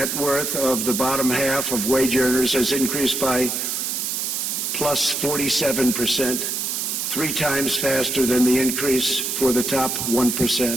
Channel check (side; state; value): right; noise; hiss, 1 dB below the sound